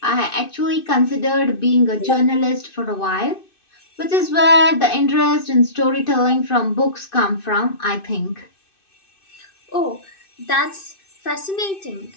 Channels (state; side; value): late; right; 2.6 ms